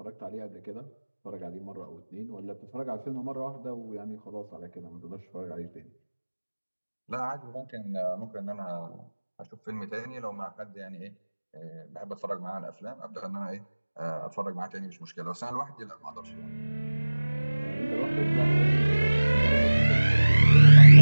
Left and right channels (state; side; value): inverted; both; correlation -1.00